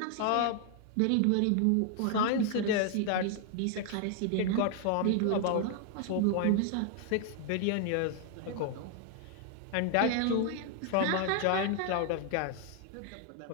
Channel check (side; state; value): both; different; correlation 0.00